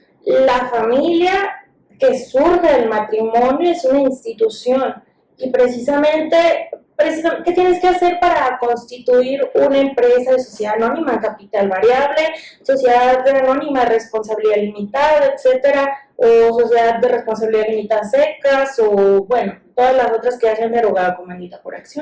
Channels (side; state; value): both; identical; correlation 1.00